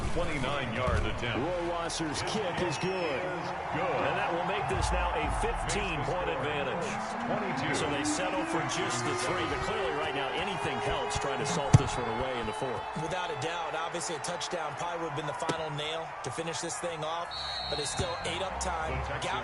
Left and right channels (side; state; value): both; identical; correlation 1.00